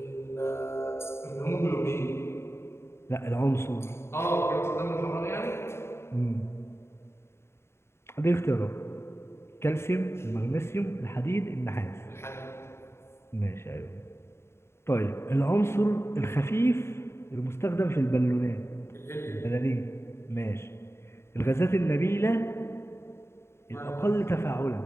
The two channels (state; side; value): late; right; 0.12 ms